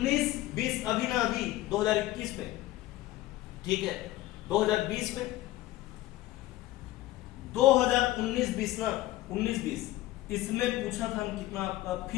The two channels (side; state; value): right; quieter; 16.5 dB